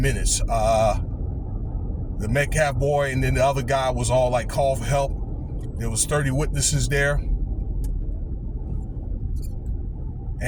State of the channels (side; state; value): both; identical; correlation 1.00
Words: The Metcalf boy and then the other guy was all like, call for help. There was 30 witnesses there.